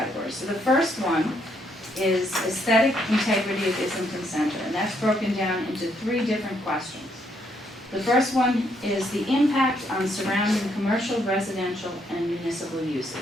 So the first one is aesthetic integrity of Islington Center, and that's broken down into 3 different questions. The first one is the impact on surrounding commercial, residential, and municipal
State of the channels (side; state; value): both; normal; correlation 0.73